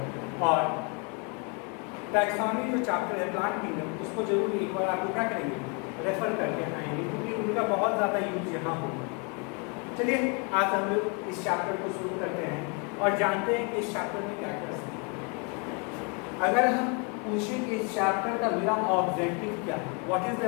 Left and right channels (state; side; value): quieter; right; 34.4 dB